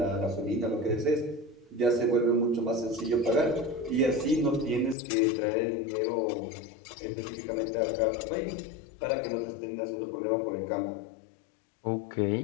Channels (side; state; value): right; drops out; at 5.0 s